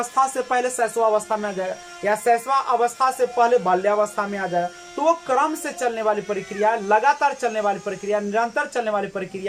से पहले शैशवावस्था में आ जाएगा या शैशवा अवस्था से पहले बाल्यावस्था में आ जाएगा। तो वो क्रम से चलने वाली प्रक्रिया है, लगातार चलने वाली प्रक्रिया, निरंतर चलने वाली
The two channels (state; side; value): identical; both; correlation 1.00